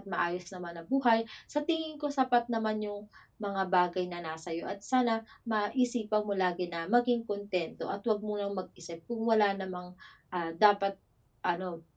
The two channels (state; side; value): identical; both; correlation 1.00